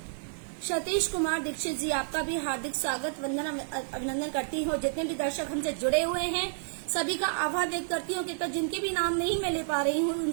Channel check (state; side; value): silent; left; digital silence